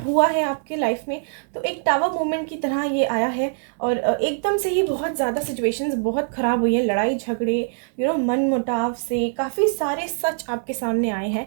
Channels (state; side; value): silent; left; digital silence